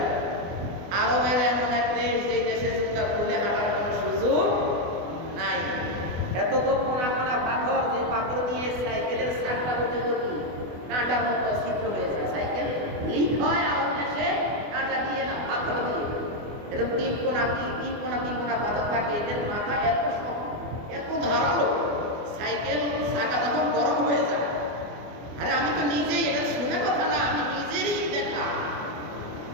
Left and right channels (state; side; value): late; left; 24 ms